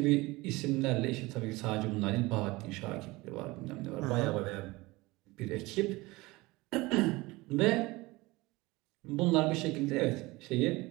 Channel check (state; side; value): quieter; left; 21.6 dB